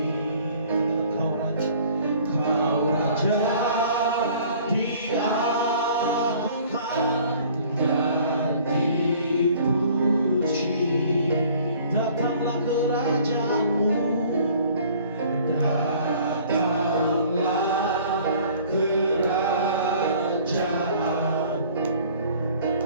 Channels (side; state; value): both; inverted; correlation -0.53